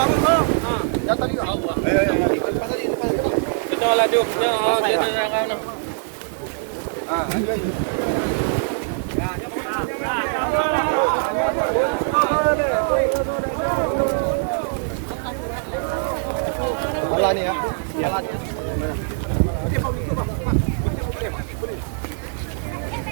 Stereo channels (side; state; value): left; silent; digital silence